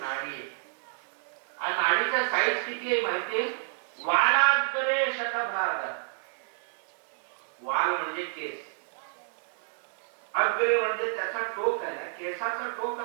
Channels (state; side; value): silent; left; digital silence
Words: आहे. आणि नाडीचा साईज किती आहे माहितीये? वालाग्रे शतभाग. वाल म्हणजे केस, अग्रे म्हणजे त्याचा टोक आहे, केसाचा टोक